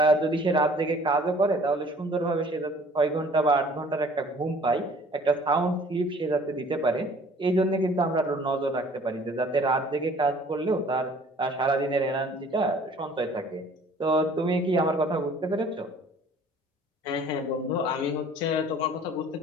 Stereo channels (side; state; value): both; normal; correlation 0.52